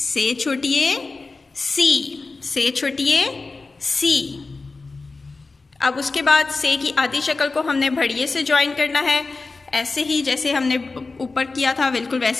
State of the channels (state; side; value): quieter; right; 3.8 dB